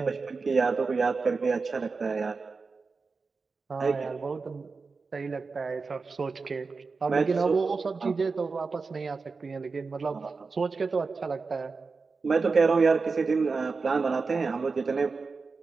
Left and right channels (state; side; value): quieter; left; 4.4 dB